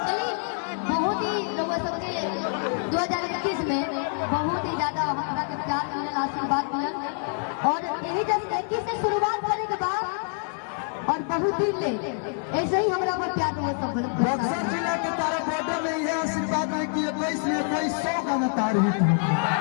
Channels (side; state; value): right; silent; 57 dB below the other